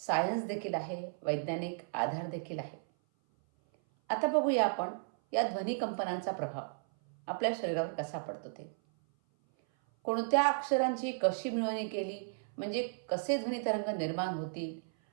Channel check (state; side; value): silent; left; 55 dB below the other